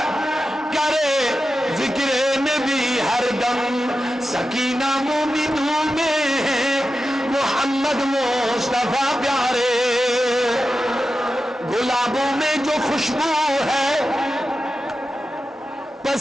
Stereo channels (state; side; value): normal; both; correlation 0.91